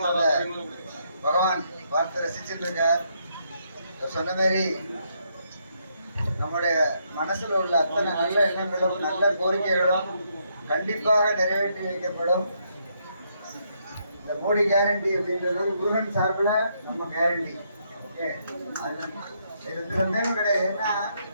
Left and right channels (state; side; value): inverted; both; correlation -0.75